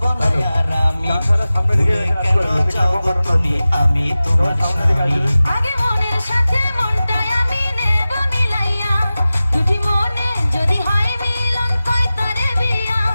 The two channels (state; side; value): inverted; both; correlation -0.96